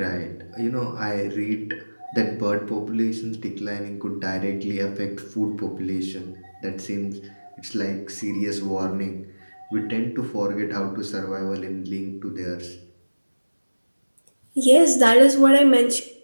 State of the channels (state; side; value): inverted; both; correlation -1.00